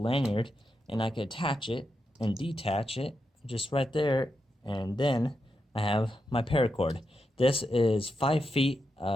lanyard, and I can attach it and detach it just right there, and then I have my paracord. This is 5 feet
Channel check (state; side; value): normal; both; correlation 0.86